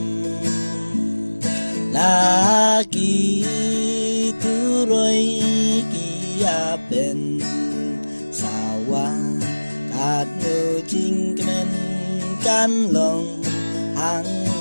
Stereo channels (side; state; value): both; inverted; correlation -1.00